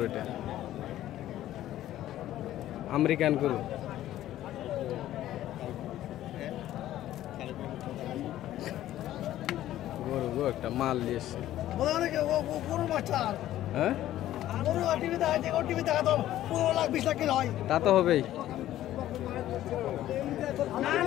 এটা আমেরিকান গরু। গরু গো একটা মাল দিয়েছে। হ্যাঁ তা তো হবেই।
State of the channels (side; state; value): right; quieter; 13.4 dB